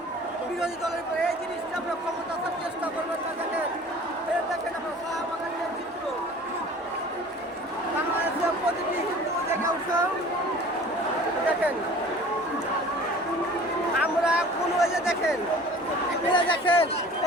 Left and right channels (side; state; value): both; normal; correlation 0.45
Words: বিরোধী দলের উপরে, এই জিনিসটা আপনার ক্ষমতা আসার চেষ্টা করবেন না। দেখেন দেখেন আপনার শাহবাগানের চিত্র, বাংলাদেশের প্রতিটি হিন্দু দেখে উৎসব দেখেন। আমরা কোনো এই যে দেখেন